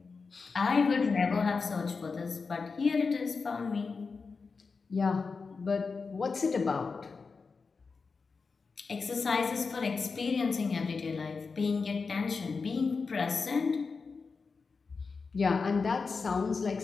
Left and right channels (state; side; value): quieter; right; 4.7 dB